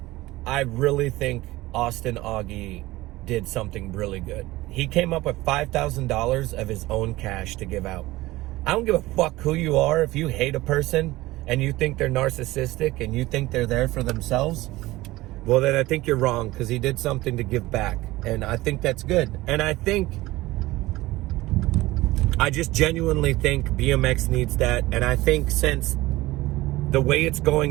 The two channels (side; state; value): left; quieter; 18.6 dB